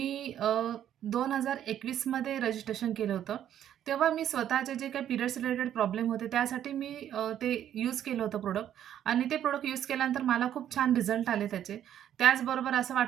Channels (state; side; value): quieter; left; 10.6 dB